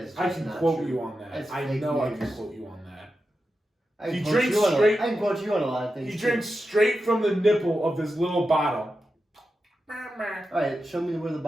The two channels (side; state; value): both; normal; correlation 0.90